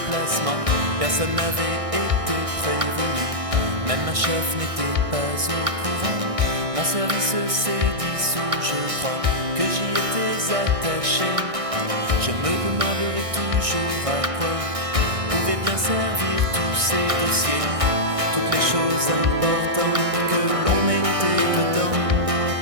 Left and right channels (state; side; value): late; left; 1.6 ms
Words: personne n'avait été prévenu, même ma chef n'était pas au courant. Mon service s'est dissous, je crois que j'y étais attaché. Je me demanderai toujours à quoi pouvaient bien servir tous ces dossiers, toutes les choses importantes que l'on mettait dedans,